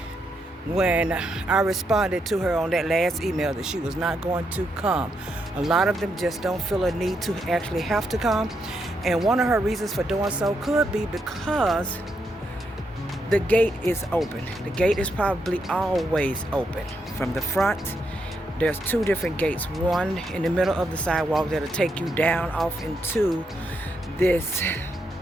when I responded to her on that last email that she was not going to come. A lot of them just don't feel a need to actually have to come. And one of her reasons for doing so could be because the gate is open. The gate is probably always open. From the front, there's 2 different gates. One in the middle of the sidewalk that'll take you down off into this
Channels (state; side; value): normal; both; correlation 0.80